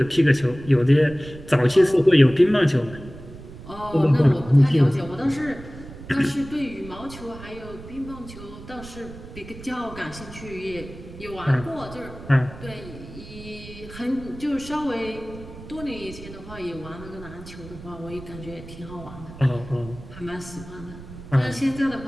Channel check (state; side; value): noise; right; rumble, 15 dB below the sound